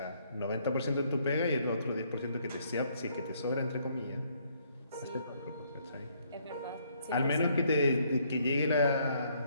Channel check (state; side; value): inverted; both; correlation -0.68